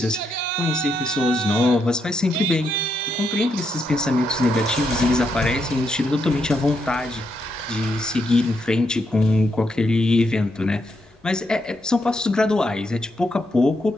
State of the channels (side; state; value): both; normal; correlation 0.80